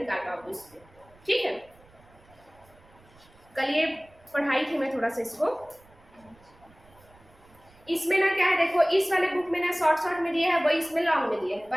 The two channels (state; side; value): noise; right; rumble, 28 dB below the sound